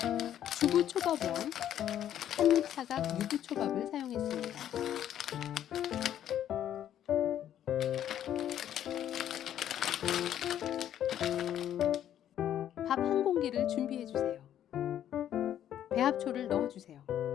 주부초밥왕 한입사각 유부초밥을 사용했습니다. 밥 한 공기를 준비해 주세요. 배합초를 넣어 주세요.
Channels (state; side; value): quieter; right; 10.8 dB